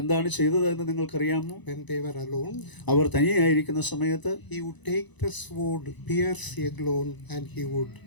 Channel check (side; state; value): right; late; 1.0 ms